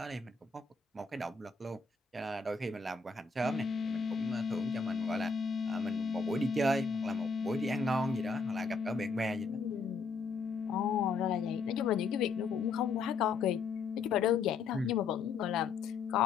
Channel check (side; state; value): right; quieter; 4.6 dB